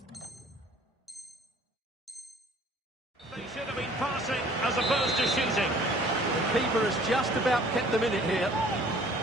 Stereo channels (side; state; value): both; normal; correlation 0.54